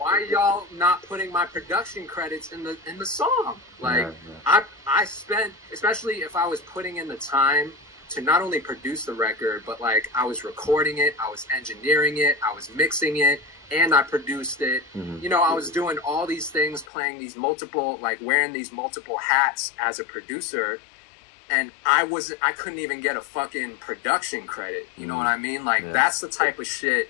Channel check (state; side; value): drops out; right; at 16.9 s